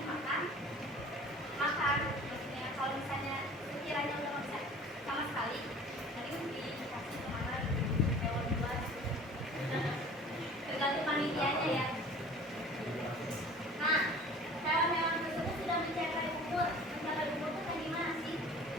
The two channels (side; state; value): both; normal; correlation 0.45